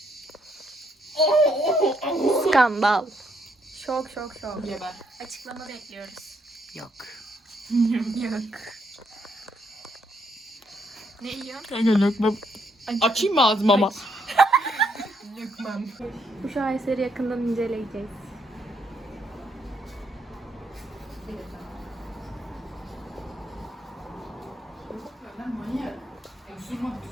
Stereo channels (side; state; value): both; normal; correlation 0.74